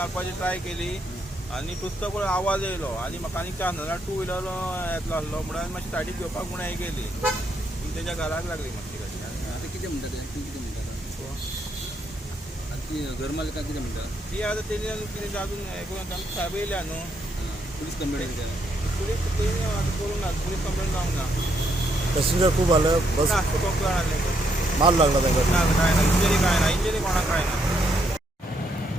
ट्राय केली आनी तुस्त पळय आवाज येयलो आनी म्हाका आनी चान्स नाजाल्यार 2 व्हिलर येतलो आसलो म्हणून हांवें मातशी सायडीक घेवपाक म्हणून हें केली. पूण तेच्या घराक लागली मातशी गाडी. आता कितें म्हणटा ते कितें म्हणटा आतां ती घर मालकां कितें म्हणटा ती आतां तेणी कितें अजून हें करून आमकां साहेब येयल्या न्हू. पुलीस कंप्लेंट केल्या पुलीस तेणी आतां करूंक ना. पुलीस कंप्लेंट जावंक ना. पॅसेंजर खूप आलं बस ना खूब जाण आसले. मार लागला त्यांना ना काय ना इंजरी काय ना. इंजरी कोणाक काय ना.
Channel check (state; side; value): normal; both; correlation 0.75